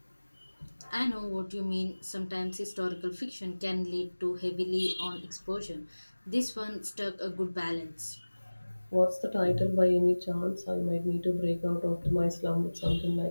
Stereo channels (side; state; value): both; inverted; correlation -1.00